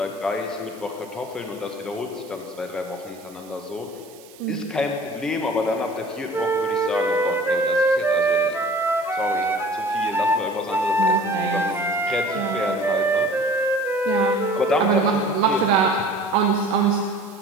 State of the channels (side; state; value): right; noise; hiss, 23 dB below the sound